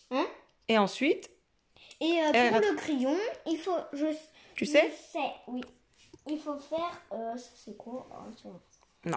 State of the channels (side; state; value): both; identical; correlation 1.00